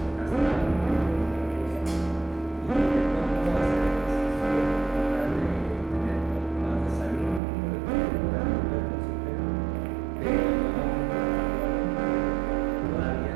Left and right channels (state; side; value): drops out; left; at 7.4 s